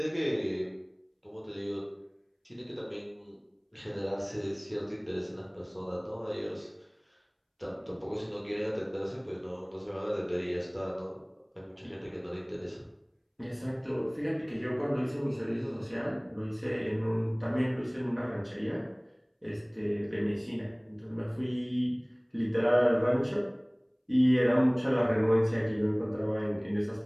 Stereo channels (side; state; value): both; identical; correlation 1.00